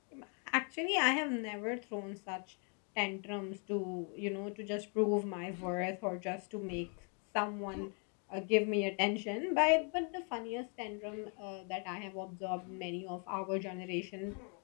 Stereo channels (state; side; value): quieter; right; 39.9 dB